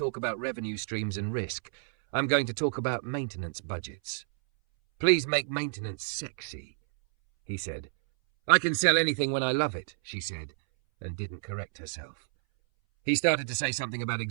about revenue streams and risk. I'm going to talk about maintenance budgets. Please make maintenance sexy, he said. I can sell anything when I love it, she said, and didn't correct herself. He started to say something about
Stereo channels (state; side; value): silent; left; 58 dB below the other